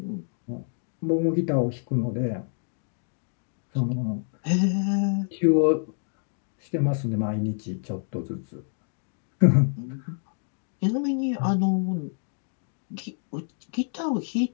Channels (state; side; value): silent; right; 60 dB below the other